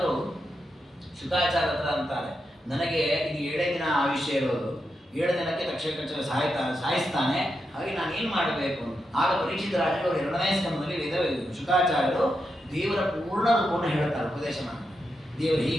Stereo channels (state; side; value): normal; both; correlation 0.86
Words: ಶುಕಾಚಾರ್ಯ ಹತ್ರ ಅಂತಾರೆ, ನನಗೆ ಇದು 7 ದಿನ ಆಯುಷ್ಯ ಇರೋದು, 7 ದಿನಕ್ಕೆ ತಕ್ಷಕ ಸಾಯಿಸ್ತಾನೆ, ಹಾಗೆ ನಾನು ಏನು ಮಾಡಬೇಕು ಅಂತ. ಆಗ ಪರೀಕ್ಷಿತ ರಾಜರು 2ನೇ ಸ್ಕಂದದಲ್ಲಿ ಶುಕಾಚಾರ್ಯರು ದೇವರ ಪೂರ್ಣ ರೂಪವನ್ನು ಹೇಳ್ತಾರೆ, ಉಪದೇಶ ಮಾಡಿ. ದೇವರು